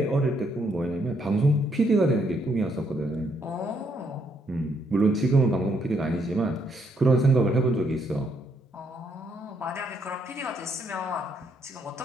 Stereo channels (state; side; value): normal; both; correlation 0.73